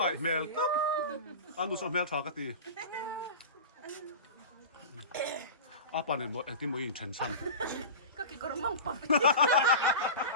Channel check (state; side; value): inverted; both; correlation -0.31